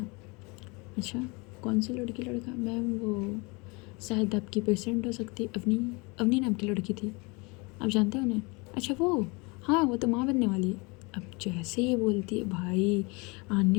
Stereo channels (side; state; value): right; quieter; 28.0 dB